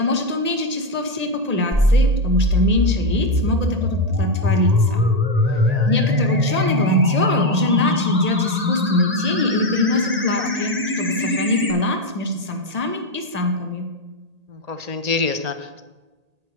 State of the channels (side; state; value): left; late; 1.8 ms